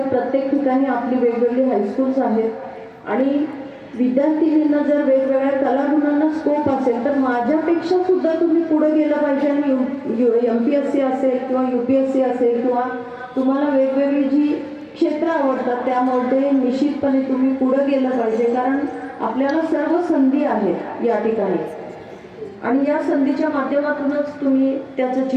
प्रत्येक ठिकाणी आपली वेगवेगळी हायस्कूल्स आहेत, आणि विद्यार्थिनींना जर वेगवेगळ्या कलागुणांना स्कोप असेल तर माझ्यापेक्षा सुद्धा तुम्ही पुढे गेलं पाहिजे. आणि MPSC असेल किंवा UPSC असेल किंवा तुम्हाला वेगवेगळी जी क्षेत्र आवडतात त्यामध्ये निश्चितपणे तुम्ही पुढे गेलं पाहिजे, कारण आपल्याला सर्व संधी आहेत या ठिकाणी, आणि या संधीच्या माध्यमातूनच तुम्ही त्याचं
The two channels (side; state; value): both; identical; correlation 1.00